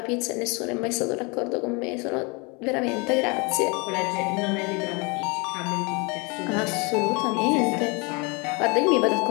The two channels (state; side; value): quieter; right; 29.5 dB